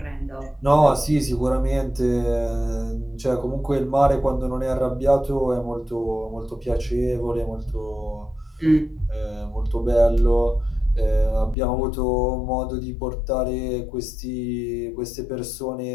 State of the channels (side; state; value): right; drops out; at 11.6 s